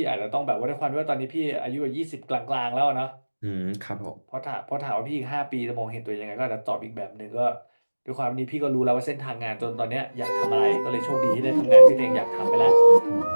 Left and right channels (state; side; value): inverted; both; correlation -1.00